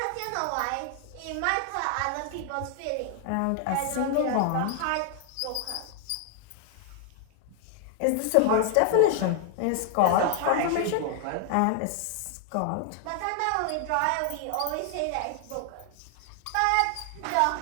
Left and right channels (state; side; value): different; both; correlation 0.00